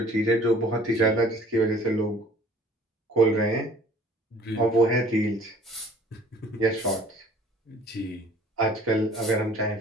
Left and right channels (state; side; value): normal; both; correlation 0.53